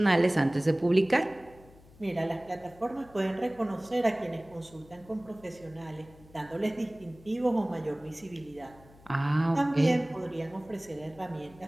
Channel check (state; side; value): noise; left; hum, 24 dB below the sound